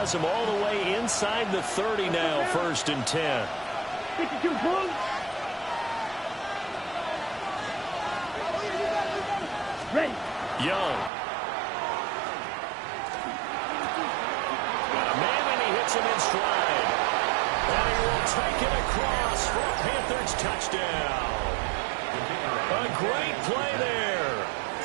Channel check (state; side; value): drops out; left; at 11.1 s